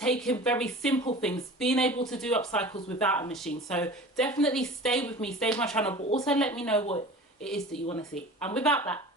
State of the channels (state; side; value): normal; both; correlation 0.39